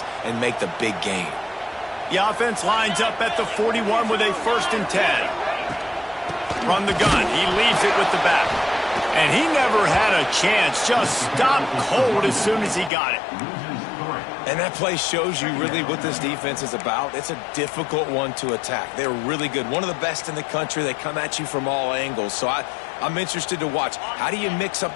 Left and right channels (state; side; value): drops out; right; at 12.9 s